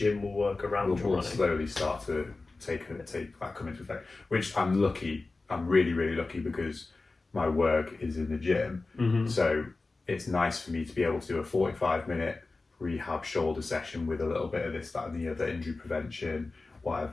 will work around your we'll running. slowly start to take that come into effect. Which I'm lucky. I'm really, really lucky because my work is in the gym. Mm-hmm. So it's nice for me to be able to do a 45-minute rehab shoulder session with a little bit of this, that, and the other, injury prevention,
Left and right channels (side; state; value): right; quieter; 3.5 dB